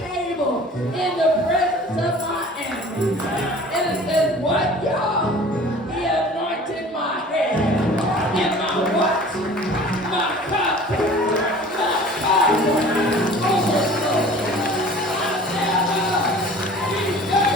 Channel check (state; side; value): normal; both; correlation 0.45